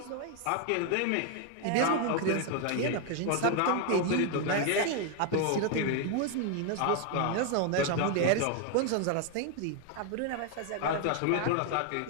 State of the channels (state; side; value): different; both; correlation 0.01